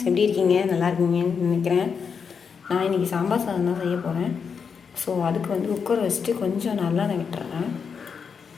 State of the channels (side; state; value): right; quieter; 6.2 dB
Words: எப்படி இருக்கீங்க? நல்லா இருக்கீங்கன்னு நினைக்கிறேன். நான் இன்றைக்கி சாம்பார் சாதம் தான் செய்ய போகிறேன். ஸோ அதுக்கு வந்து குக்கர் வச்சுட்டு கொஞ்சம் நல்லெண்ணெய் விட்டுறேன்.